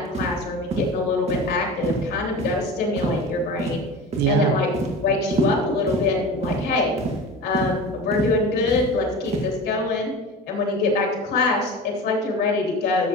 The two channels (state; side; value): normal; both; correlation 0.33